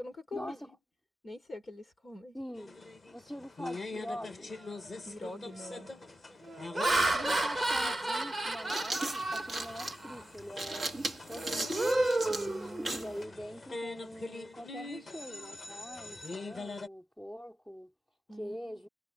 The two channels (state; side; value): normal; both; correlation 0.92